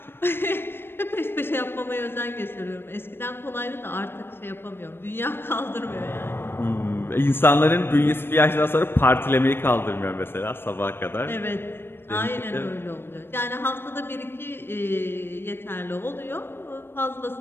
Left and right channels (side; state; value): right; late; 0.11 ms